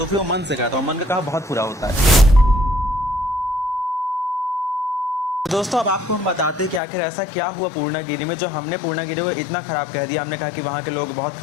फिर वो मन से कहता, और मन का कहा बहुत बुरा होता है। दोस्तों अब आपको हम बताते हैं कि आखिर ऐसा क्या हुआ पूर्णागिरि में, जो हमने पूर्णागिरि को इतना ख़राब कह दिया। हमने कहा कि वहाँ के लोग बहुत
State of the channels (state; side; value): drops out; right; at 6.8 s